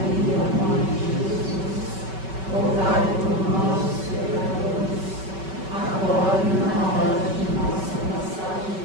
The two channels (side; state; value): left; late; 5.3 ms